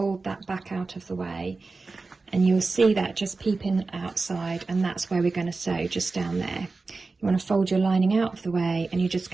that back out of the way, and you'll see that just peeping outside, and that's where we're going to sew, just down there. You want to fold your lining out of the way, and you're just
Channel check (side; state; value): left; quieter; 3.8 dB